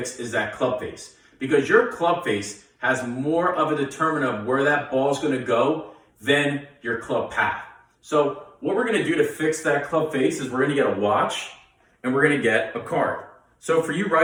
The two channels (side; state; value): both; identical; correlation 1.00